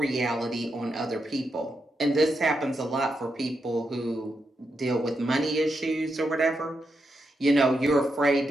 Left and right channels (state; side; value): normal; both; correlation 0.84